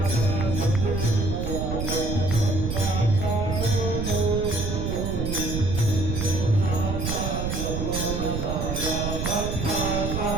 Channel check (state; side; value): noise; right; rumble, 2 dB below the sound